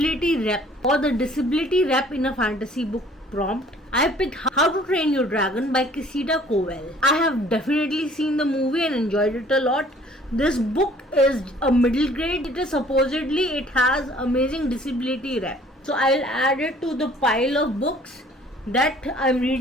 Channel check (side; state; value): both; normal; correlation 0.55